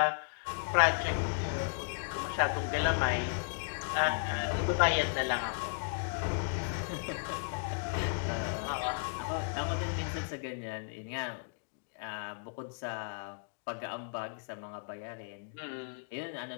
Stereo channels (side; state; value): right; silent; digital silence